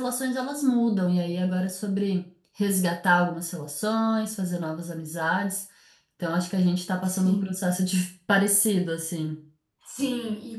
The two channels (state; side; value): identical; both; correlation 1.00